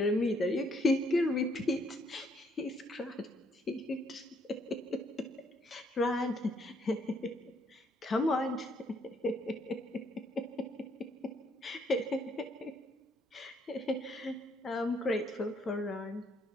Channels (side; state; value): both; normal; correlation 0.69